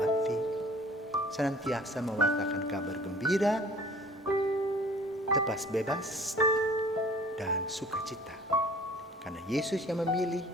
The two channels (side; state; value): both; normal; correlation 0.49